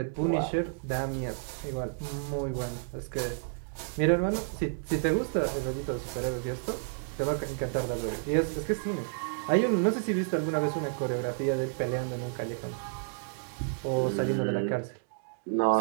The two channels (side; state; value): left; silent; digital silence